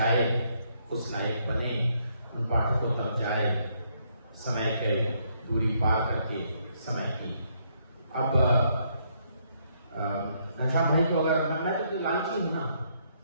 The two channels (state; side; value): inverted; both; correlation -0.72